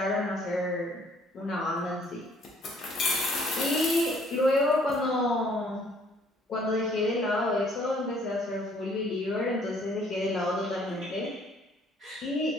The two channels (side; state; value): both; normal; correlation 0.61